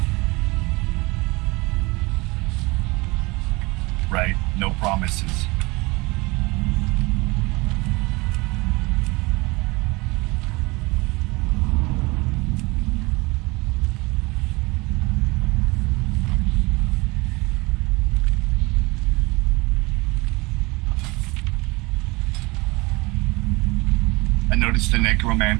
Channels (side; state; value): left; quieter; 24.2 dB